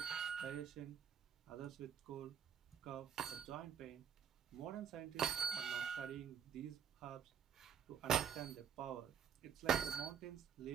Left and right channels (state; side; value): quieter; left; 7.9 dB